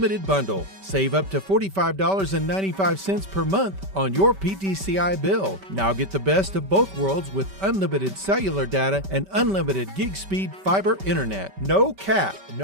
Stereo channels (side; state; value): left; late; 5.2 ms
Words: bundle. Save up to $45.95 per month on your PTCI bill. Now get the best of both worlds with unlimited cellular data and unlimited gig speed fiber internet. No cap.